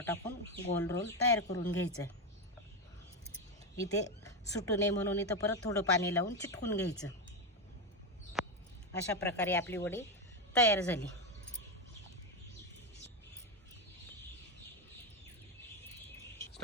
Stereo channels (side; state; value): both; normal; correlation 0.10